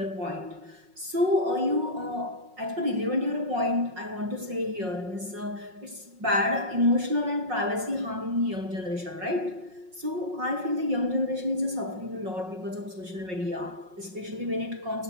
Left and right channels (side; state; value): left; late; 5.5 ms